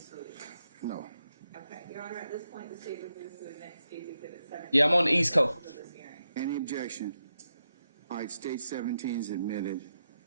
deletions? No. Okay. Your Honor, at this point, the state would move to the next State's Exhibit 17. Yeah, I'm on the East Coast. Of this hearing. Any objection? All right, state 17 is admitted.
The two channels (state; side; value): inverted; both; correlation -0.86